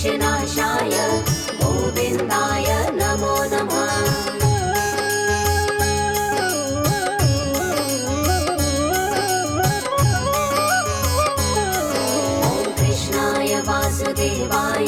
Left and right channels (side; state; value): both; identical; correlation 1.00